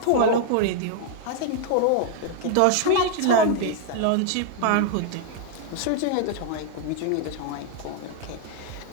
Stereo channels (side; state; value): both; different; correlation 0.00